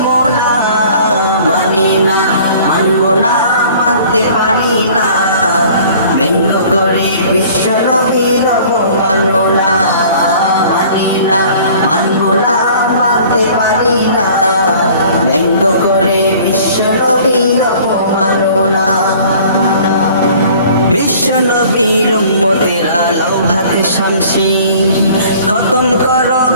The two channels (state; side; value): inverted; both; correlation -0.50